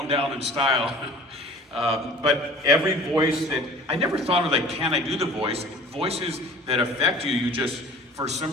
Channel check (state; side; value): normal; both; correlation 0.46